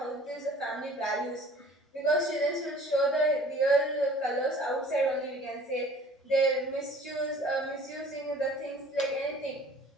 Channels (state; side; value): normal; both; correlation 0.49